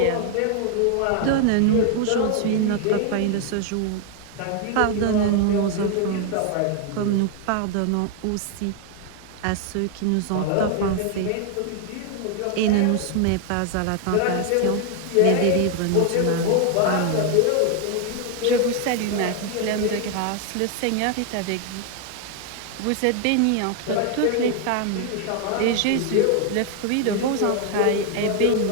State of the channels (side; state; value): both; different; correlation 0.00